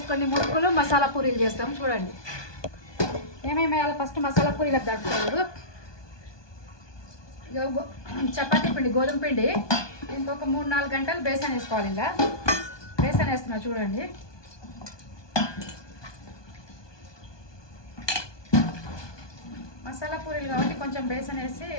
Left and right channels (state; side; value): late; right; 1.2 ms